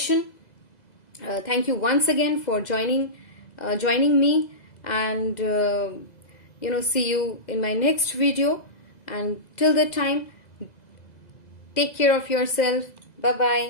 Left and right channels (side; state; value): right; late; 2.0 ms